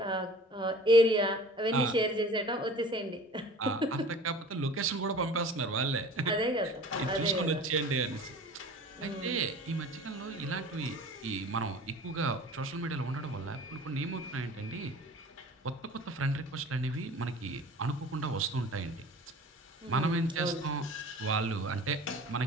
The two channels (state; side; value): normal; both; correlation 0.43